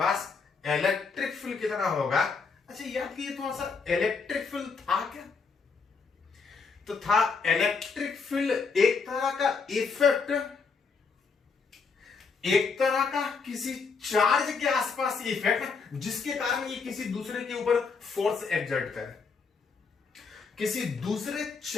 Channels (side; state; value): right; quieter; 5.0 dB